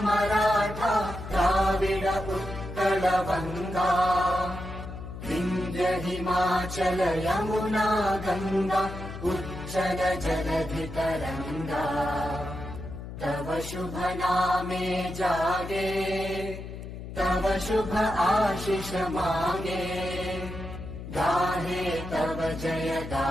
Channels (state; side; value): noise; left; hum, 10 dB below the sound